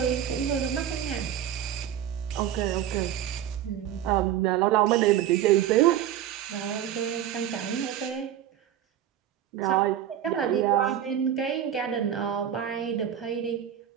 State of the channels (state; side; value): quieter; left; 10.5 dB